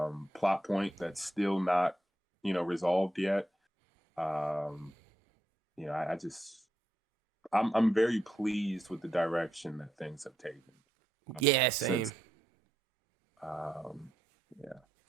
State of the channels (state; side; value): normal; both; correlation 0.82